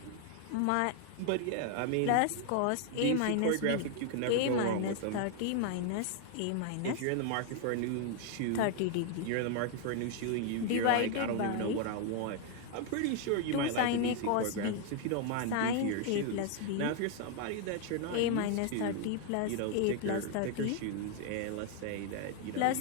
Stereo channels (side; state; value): both; different; correlation 0.00